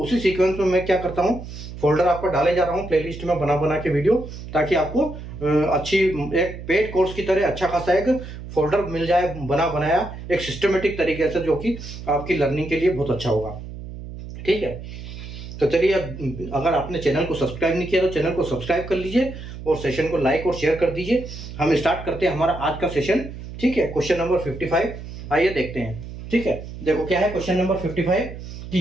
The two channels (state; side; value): noise; right; hum, 11 dB below the sound